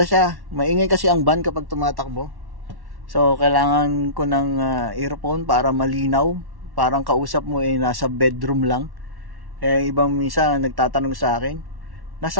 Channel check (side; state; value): left; late; 1.1 ms